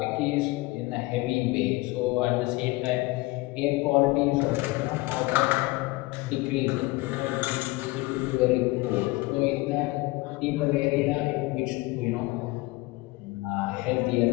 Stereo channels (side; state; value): right; quieter; 21.7 dB